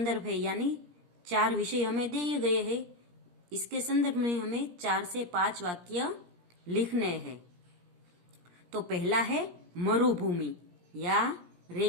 है, यानी 4 विषय हमें दिए गए हैं। इसके संदर्भ में हमें 4 से 5 वाक्य लिखने हैं। तो पहला है मरुभूमि या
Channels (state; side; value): late; left; 17 ms